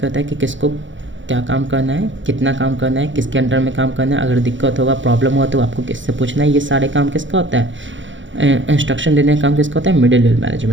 है कि किसको क्या काम करना है, कितना काम करना है, किसके अंडर में काम करना है, अगर दिक्कत होगा, प्रॉब्लम हुआ तो आपको किससे पूछना है, ये सारे काम किसका होता है, इंस्ट्रक्शन देने का काम किसका होता है, मिडिल लेवल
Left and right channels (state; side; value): late; left; 0.55 ms